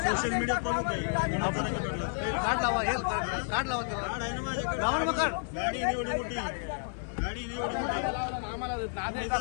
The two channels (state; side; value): silent; right; 57 dB below the other